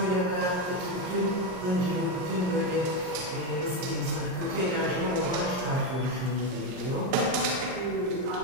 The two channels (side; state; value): left; late; 39 ms